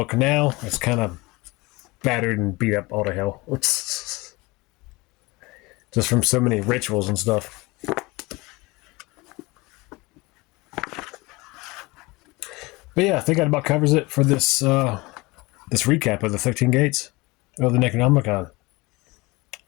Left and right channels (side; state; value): right; quieter; 23.4 dB